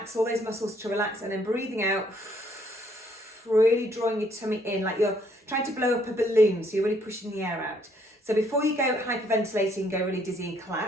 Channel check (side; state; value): both; normal; correlation 0.67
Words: all those muscles to relax, and then breathing out, really drawing your tummy in like you're trying to blow up a balloon, so you're really pushing the air out. So before you go hyperventilating, go really dizzy and